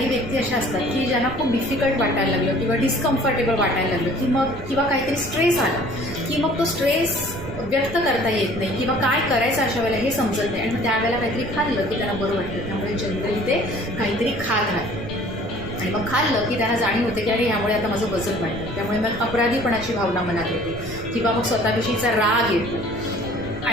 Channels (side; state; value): right; noise; rumble, 12 dB below the sound